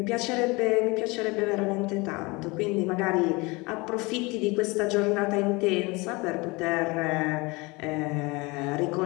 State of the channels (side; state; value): right; quieter; 25.2 dB